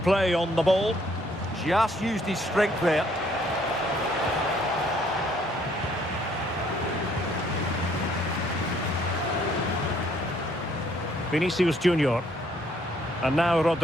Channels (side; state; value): both; normal; correlation 0.65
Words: play on the ball. Just used his strength there. Vinicius Junior. And now